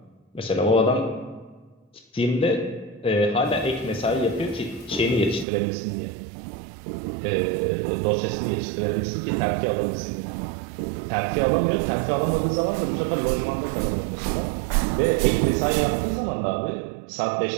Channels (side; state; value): left; drops out; at 5.5 s